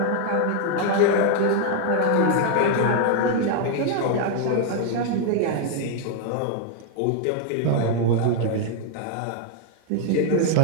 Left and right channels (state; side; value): different; both; correlation 0.00